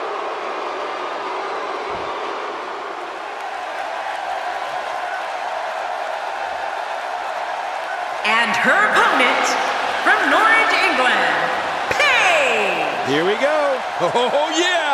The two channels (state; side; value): identical; both; correlation 1.00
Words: And her opponent, from Norwich, England, Paige. Here we go. Oh,